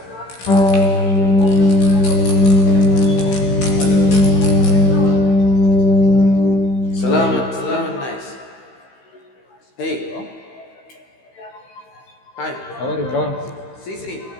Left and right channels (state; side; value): late; right; 16 ms